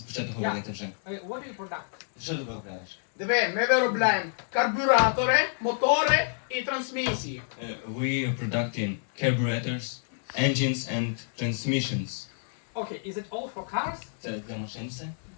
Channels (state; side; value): silent; right; digital silence